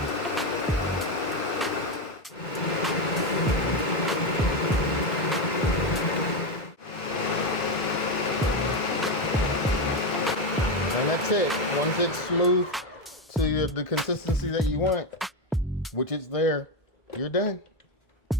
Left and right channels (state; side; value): normal; both; correlation 0.10